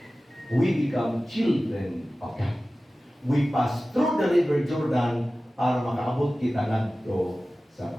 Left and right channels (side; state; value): both; normal; correlation 0.96